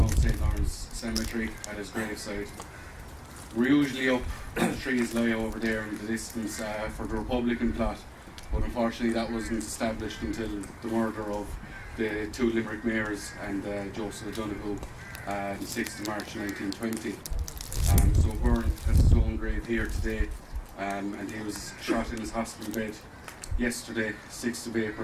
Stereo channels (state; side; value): identical; both; correlation 1.00